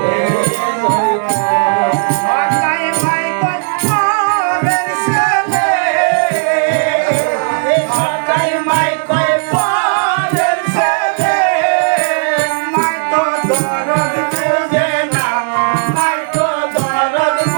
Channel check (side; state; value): left; silent; digital silence